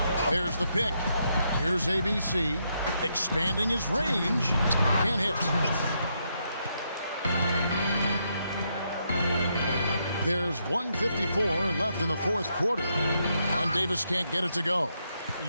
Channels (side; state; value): both; inverted; correlation -0.78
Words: There's the pick. Here's ABC. Expanding his range. Can't hit. There's 1:54 left in the fourth quarter. And Davis can't get it to go.